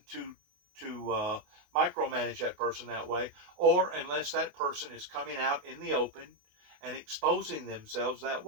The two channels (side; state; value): left; late; 28 ms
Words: to micromanage that person that way, or unless that person is coming out in the open and exposing themselves that